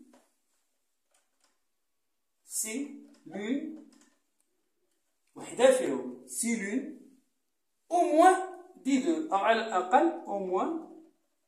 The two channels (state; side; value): identical; both; correlation 1.00